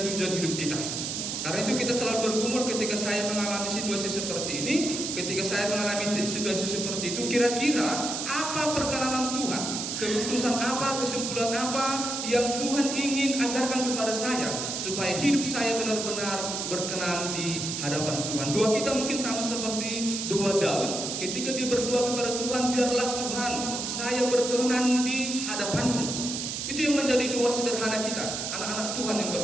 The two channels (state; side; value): noise; right; hiss, 3 dB below the sound